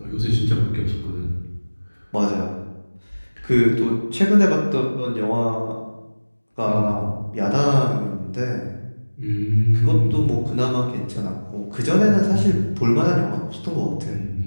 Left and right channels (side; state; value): both; inverted; correlation -1.00